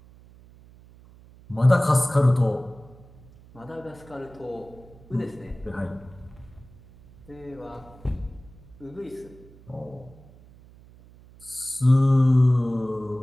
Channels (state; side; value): noise; right; hum, 23 dB below the sound